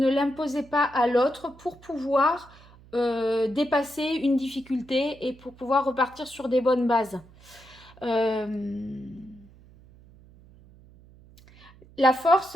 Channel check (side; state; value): right; noise; hum, 24 dB below the sound